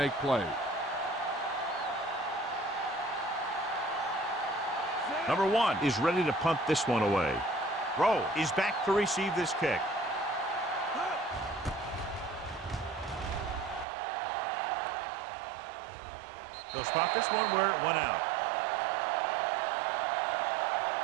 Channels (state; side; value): drops out; left; at 13.9 s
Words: plays. Number 1 is ready to punt this one away. Rowe is back to receive this kick. They'll spot this one where it went out.